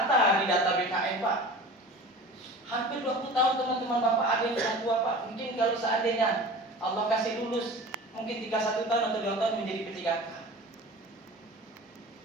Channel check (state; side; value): normal; both; correlation 0.38